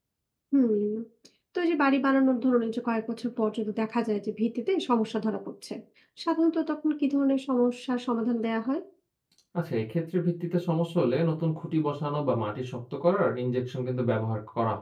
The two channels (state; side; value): identical; both; correlation 1.00